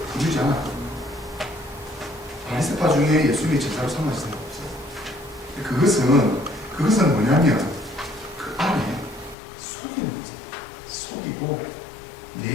부르지 않아. 바리새파 중에 예수님이 제자로 삼으신 사람 없어요. 그것은 뭐냐면 그 안에 속이는 거죠. 속이고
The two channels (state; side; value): drops out; right; at 9.3 s